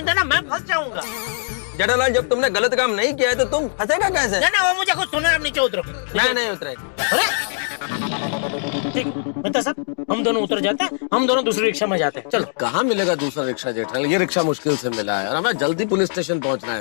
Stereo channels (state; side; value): silent; right; digital silence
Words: देना, मैं फंस जाऊंगा। जेठालाल, जब तुमने गलत काम नहीं किया है तो तुम फंसेगा कैसे? ना, वो मुझे कुछ सुना, आप नीचे उतरो। मैं नहीं उतरेगा। अरे ठीक, मेहता साहब हम दोनों उतर जाते हैं, हम दोनों दूसरी रिक्शा में जाते हैं। चलो। कहाँ मिलेगा दूसरा रिक्शा जेठालाल? ये रिक्शा मुश्किल से मिला है और हमें जल्दी पुलिस स्टेशन पहुंचना